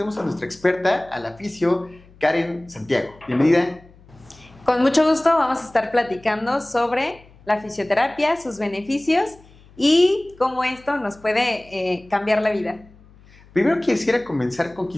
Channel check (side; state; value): left; noise; hum, 26 dB below the sound